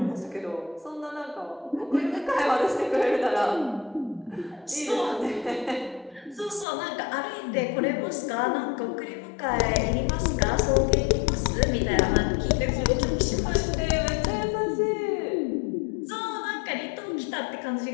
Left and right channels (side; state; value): right; drops out; at 6.7 s